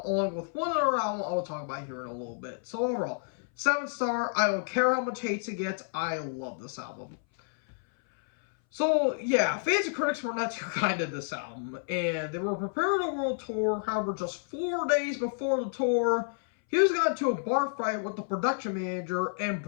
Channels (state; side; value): silent; right; 58 dB below the other